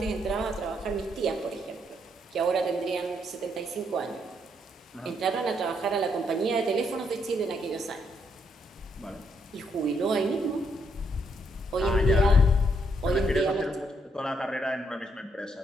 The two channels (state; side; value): normal; both; correlation 0.74